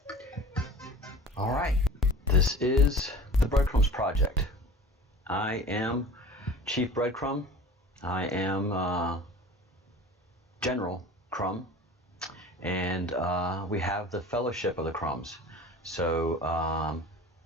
All right. This is the Breadcrumbs Project. I am Chief Breadcrumb. I am General Crumb. And we have the Fellowship of the Crumbs. So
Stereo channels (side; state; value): both; normal; correlation 0.41